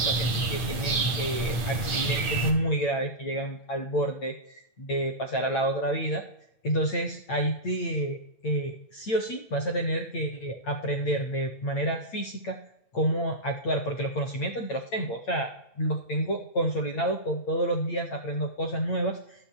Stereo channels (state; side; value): late; right; 8.7 ms